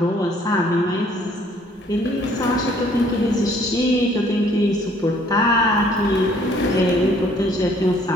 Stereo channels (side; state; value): both; normal; correlation 0.61